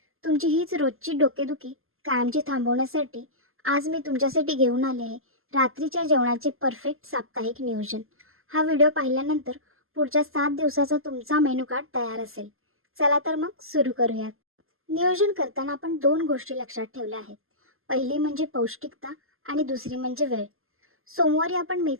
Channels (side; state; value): left; late; 0.61 ms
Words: तुमची हीच रोजची डोकेदुखी कायमची थांबवण्यासाठी आज मी तुमच्यासाठी घेऊन आले आहे रात्रीच्या जेवणाचे परफेक्ट साप्ताहिक नियोजन. हा व्हिडिओ पाहिल्यानंतर पुढच्या 7 दिवसाचा तुमचा मेनू कार्ड तयार असेल. चला तर मग सुरू करूयात. नियोजन करताना आपण 2 गोष्टी लक्षात ठेवल्या आहेत. पहिली म्हणजे पौष्टिकता आणि दुसरी म्हणजे वेळ. सोमवारी आपण